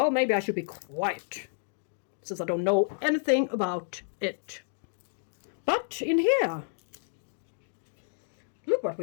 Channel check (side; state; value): right; silent; digital silence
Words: maybe I should be quiet, since I don't know anything about it. But in here, look what